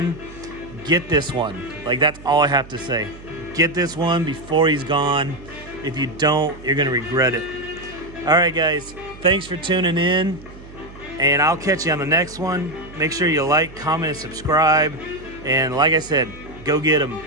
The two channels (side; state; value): right; noise; hum, 18 dB below the sound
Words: Get this one. Like, that's all I have to say. Get this one before he's gone. If you don't, you're gonna regret it. All right, guys, thanks for tuning in, and I'll catch you on the next one. Make sure you like, comment, and subscribe. And like I said, go get them